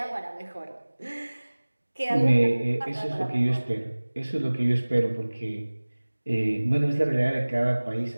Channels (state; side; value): inverted; both; correlation -1.00